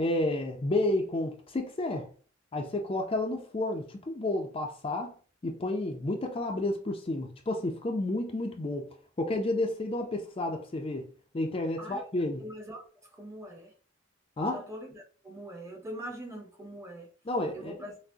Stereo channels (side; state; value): both; normal; correlation 0.56